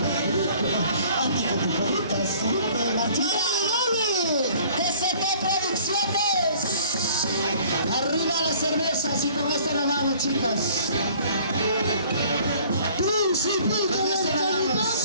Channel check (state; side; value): inverted; both; correlation -0.53